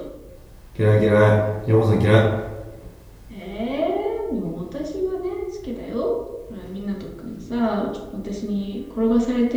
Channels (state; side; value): identical; both; correlation 1.00